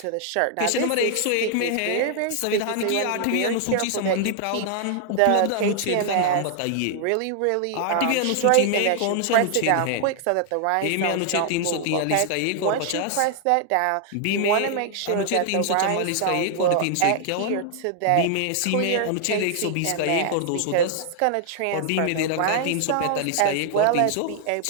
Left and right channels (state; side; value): different; both; correlation 0.00